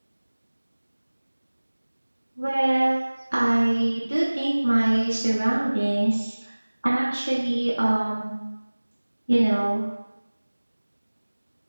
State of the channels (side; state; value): both; inverted; correlation -1.00